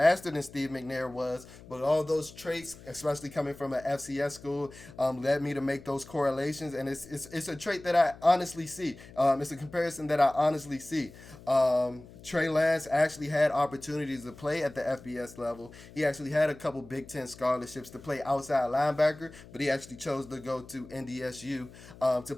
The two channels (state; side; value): noise; left; hum, 19 dB below the sound